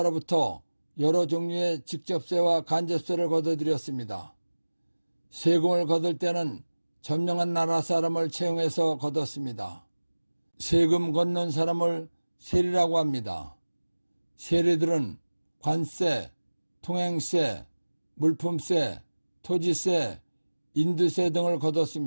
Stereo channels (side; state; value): both; inverted; correlation -1.00